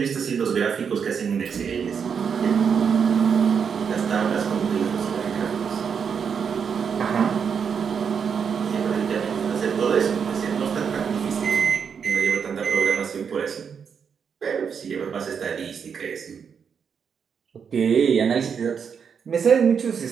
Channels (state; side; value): quieter; left; 6.8 dB